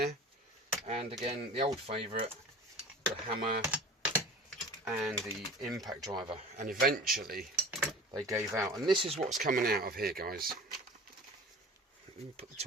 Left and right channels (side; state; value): both; normal; correlation 0.40